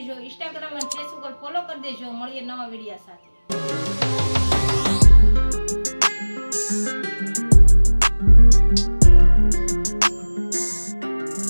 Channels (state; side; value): inverted; both; correlation -1.00